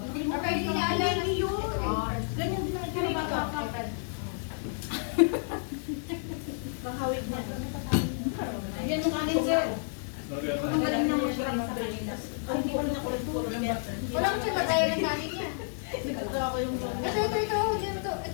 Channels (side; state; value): right; silent; digital silence